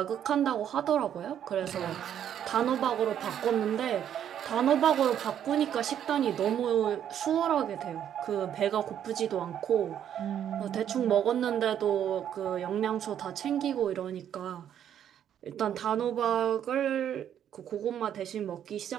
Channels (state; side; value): quieter; left; 9.8 dB